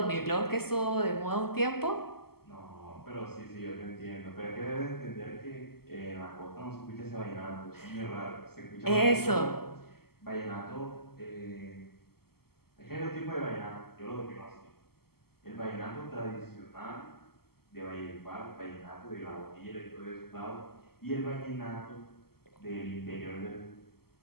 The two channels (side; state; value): right; late; 0.95 ms